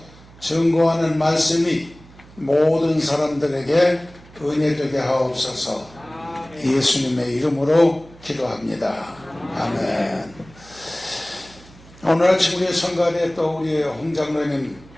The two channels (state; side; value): noise; right; hum, 23 dB below the sound